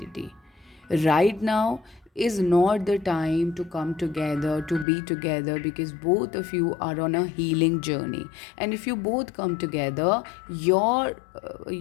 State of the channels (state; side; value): drops out; right; at 4.9 s